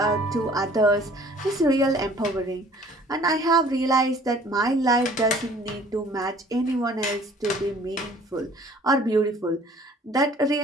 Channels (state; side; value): normal; both; correlation 0.53